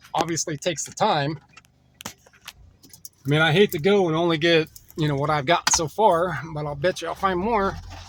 obviously it takes the time. I mean, I hate to go and only get, you know, what I've gotten so far, but I'll bet you I'll find more.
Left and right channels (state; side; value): identical; both; correlation 1.00